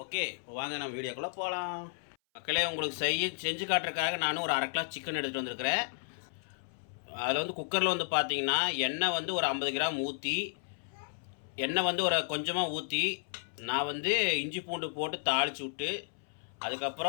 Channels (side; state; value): right; silent; 56 dB below the other